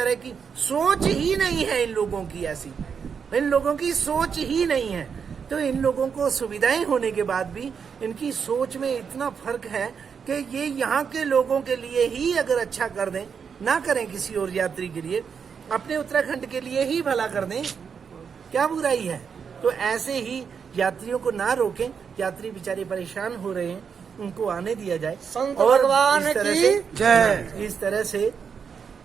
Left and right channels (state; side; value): quieter; left; 6.5 dB